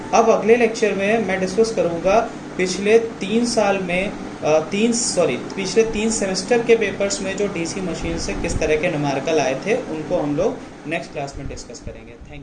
अब अगले लेक्चर में मैं डिस्कस करूंगा पिछले 3 साल में पिछले 3 सेमेस्टर के पेपर्स में जो डीसी मशीन से किस तरह के न्यूमेरिकल आए थे उनको हम लोग नेक्स्ट क्लास में डिस्कस करेंगे।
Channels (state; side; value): identical; both; correlation 1.00